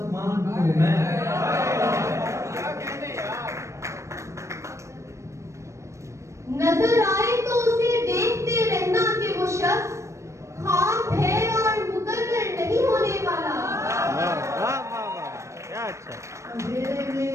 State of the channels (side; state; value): left; late; 0.14 ms